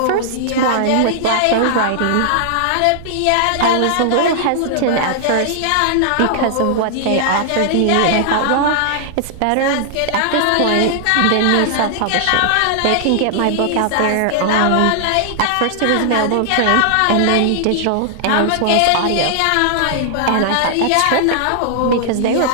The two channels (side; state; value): both; different; correlation -0.01